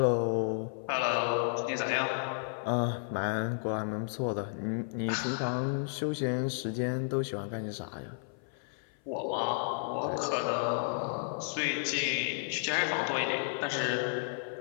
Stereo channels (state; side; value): silent; right; 56 dB below the other